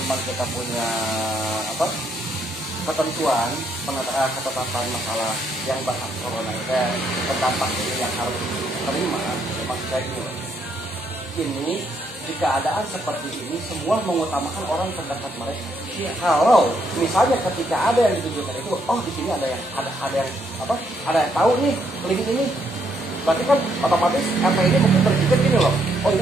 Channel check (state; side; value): normal; both; correlation 0.73